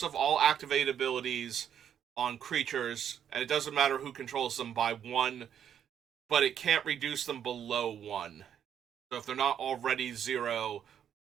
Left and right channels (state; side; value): quieter; left; 9.1 dB